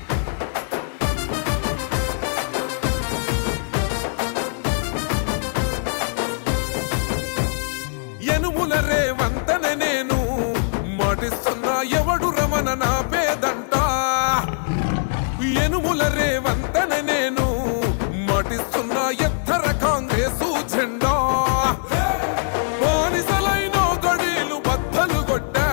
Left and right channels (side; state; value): right; silent; digital silence